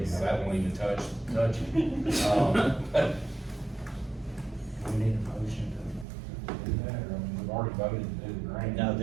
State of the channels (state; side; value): drops out; left; at 6.1 s